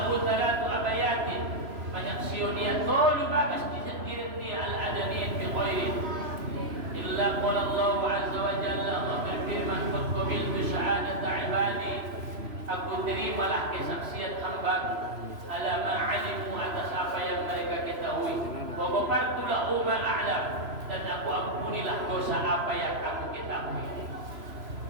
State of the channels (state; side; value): late; left; 3.0 ms